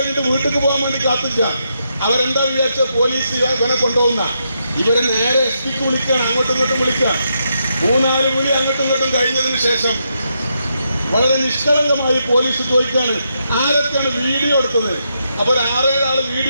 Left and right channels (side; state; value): both; inverted; correlation -0.82